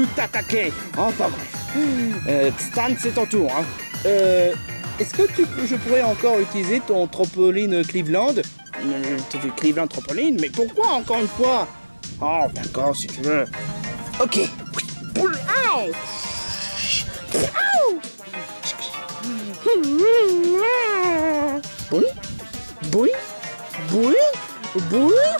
t'attaquer. Enfin bref. Stan, c'est ton tour. Hein. Est-ce que je pourrais encore utiliser ton trampoline Cleveland? Cleveland trampoline? Mais pourquoi encore une fois? Oh, d'accord, si tu veux. Ok. Boui.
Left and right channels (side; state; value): both; inverted; correlation -1.00